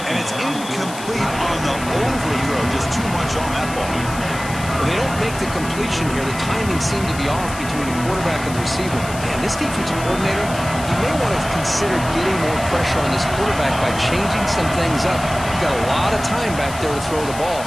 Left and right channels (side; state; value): left; noise; hiss, 13 dB below the sound